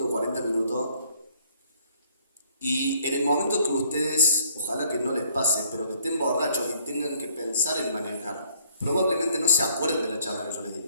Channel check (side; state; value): both; inverted; correlation -0.63